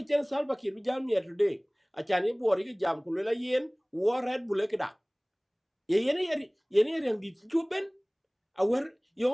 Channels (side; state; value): both; identical; correlation 1.00